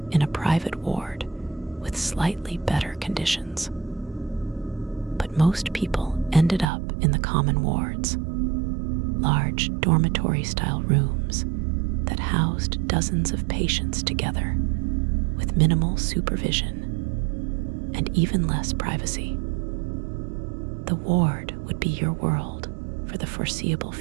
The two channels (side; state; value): left; drops out; at 6.7 s